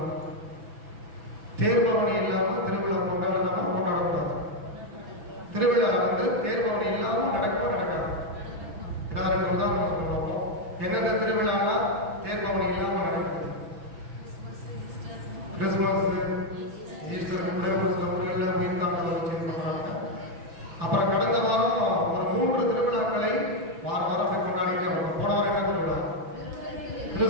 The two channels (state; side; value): late; left; 6.1 ms